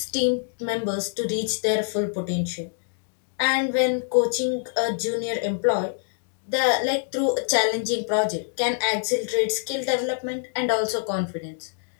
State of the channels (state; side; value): silent; right; digital silence